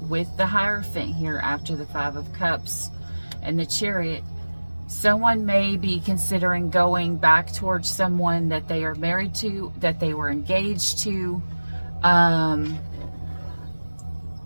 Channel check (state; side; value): inverted; both; correlation -1.00